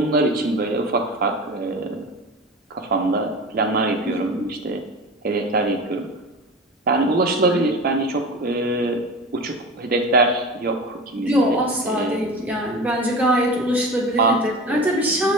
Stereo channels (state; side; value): normal; both; correlation 0.32